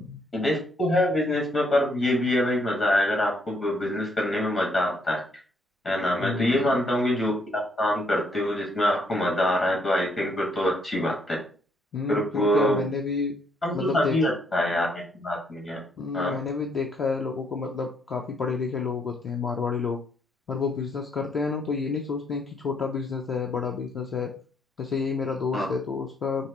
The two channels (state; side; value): normal; both; correlation 0.71